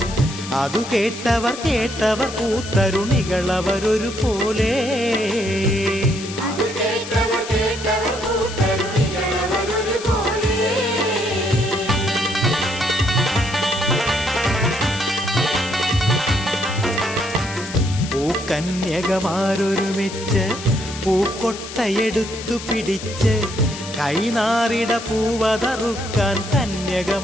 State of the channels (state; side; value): noise; left; hiss, 11 dB below the sound